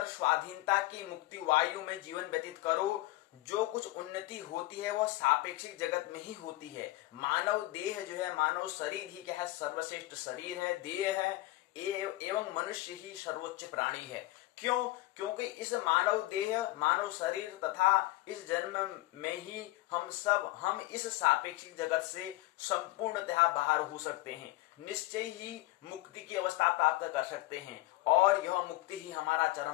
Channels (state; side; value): quieter; right; 18.6 dB